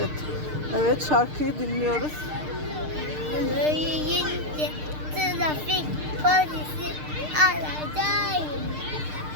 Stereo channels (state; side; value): late; left; 6.6 ms